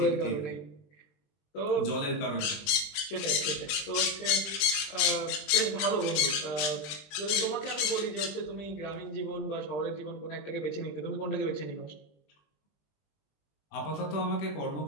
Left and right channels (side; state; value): right; late; 20 ms